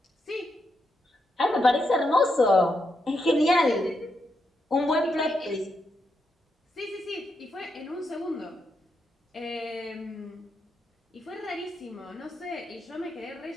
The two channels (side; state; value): both; normal; correlation 0.82